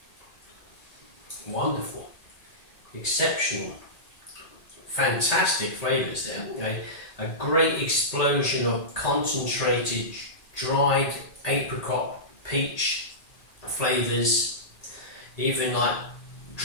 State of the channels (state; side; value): late; right; 1.8 ms